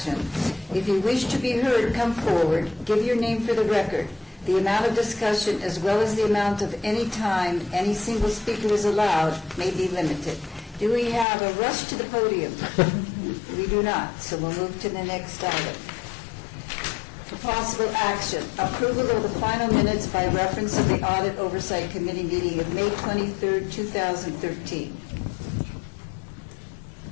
If you wish to be heard, come forward, give your name for the record. The amount of discussion, as well as the amount of any time any single speaker is allowed, may be limited. Do we have a rush to the podium? We do not, so we'll move to the next item. For possible action, approval of the final minutes by reference of the Audit Oversight Committee meeting of May 23rd, 2013.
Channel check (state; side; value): drops out; right; at 11.2 s